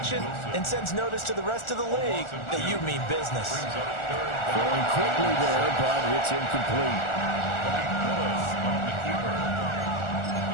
and sends notice to the rest of the league that you mean business. Going quickly there, but it's incomplete.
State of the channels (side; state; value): right; late; 1.4 ms